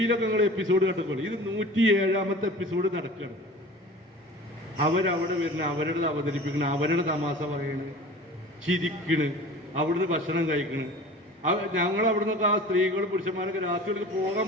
നിങ്ങൾ എപ്പിസോഡ് കണ്ടപ്പോൾ ഇത് 107ാമത്തെ എപ്പിസോഡ് നടക്കുകയാണ്. അവരവിടെ വരുന്ന അവരുടെ അവതരിപ്പിക്കണ, അവരുടെ തമാശ പറയണ്, ചിരിക്കണ്, അവിടുന്ന് ഭക്ഷണം കഴിക്കണ്. ഞങ്ങൾ അവിടുന്ന് ആ സ്ത്രീകളും പുരുഷന്മാരൊക്കെ രാത്രികൾക്ക് പോകാൻ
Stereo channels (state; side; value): normal; both; correlation 0.40